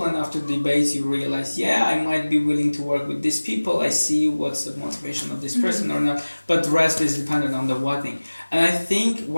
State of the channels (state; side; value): inverted; both; correlation -1.00